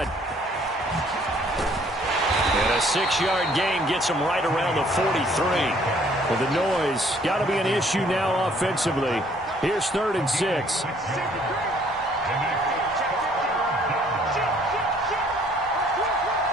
And a 6-yard gain gets him right around the 43. Well, the noise got to be an issue now offensively. Here's 3rd and 6.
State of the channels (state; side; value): normal; both; correlation 0.61